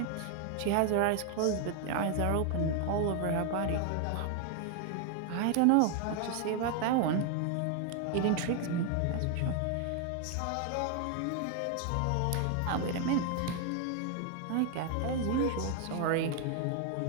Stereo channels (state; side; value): different; both; correlation 0.01